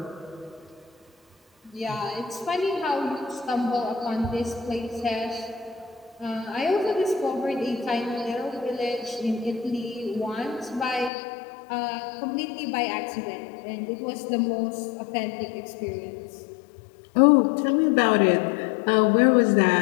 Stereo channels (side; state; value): right; drops out; at 11.1 s